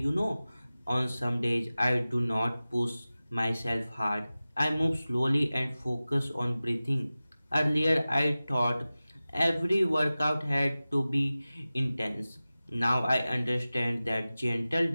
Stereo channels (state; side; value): inverted; both; correlation -0.97